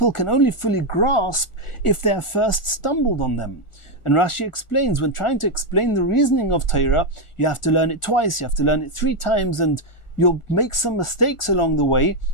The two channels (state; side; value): late; right; 1.4 ms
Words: can only fully grasp if they have first stumbled on them. And Rashi explains, when trying to explain the reasoning of Torah, you have to learn it twice, you have to learn it 3 times, and you'll make some mistakes along the way,